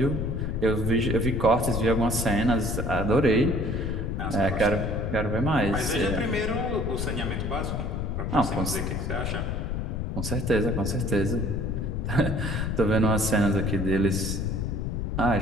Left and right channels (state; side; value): noise; left; rumble, 2 dB below the sound